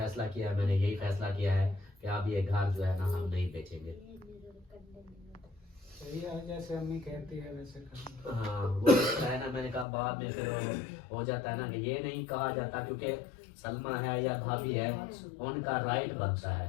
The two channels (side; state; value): right; drops out; at 9.9 s